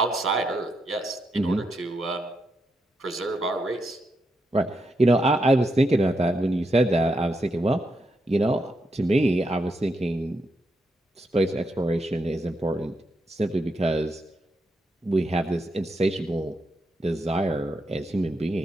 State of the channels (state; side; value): normal; both; correlation 0.82